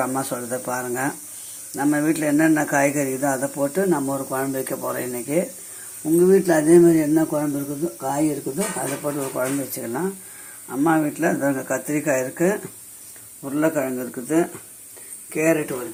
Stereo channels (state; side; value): identical; both; correlation 1.00